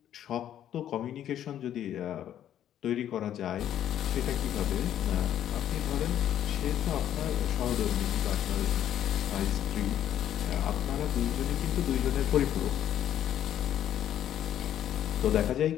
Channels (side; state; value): right; quieter; 10.9 dB